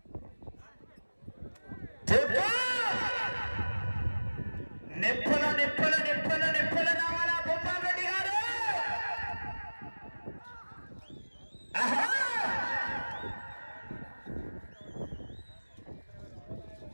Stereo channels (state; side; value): inverted; both; correlation -1.00